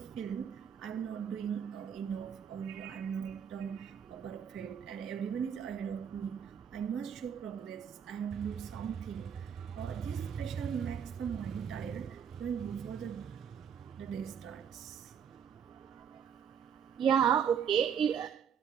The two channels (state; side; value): quieter; left; 7.8 dB